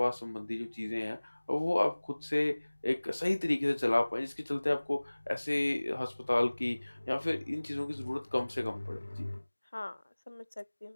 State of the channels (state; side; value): inverted; both; correlation -1.00